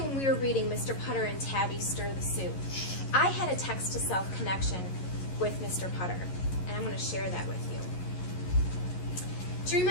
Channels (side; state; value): right; late; 11 ms